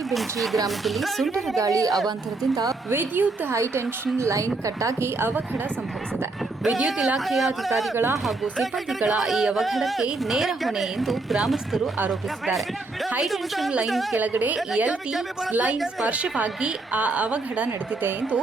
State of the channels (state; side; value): quieter; left; 3.4 dB